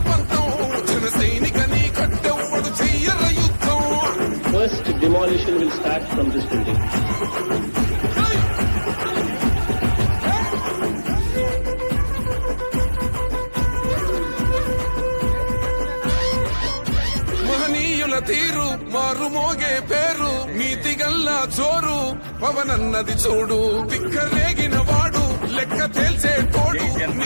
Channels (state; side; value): inverted; both; correlation -1.00